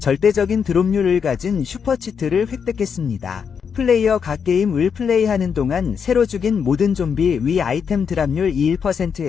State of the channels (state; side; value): quieter; right; 6.7 dB